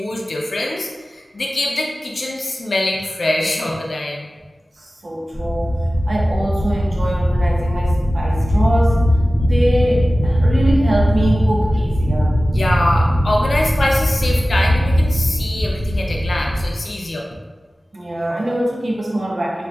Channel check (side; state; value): both; normal; correlation 0.96